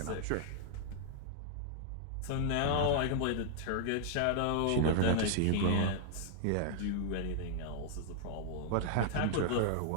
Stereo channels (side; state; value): both; different; correlation 0.00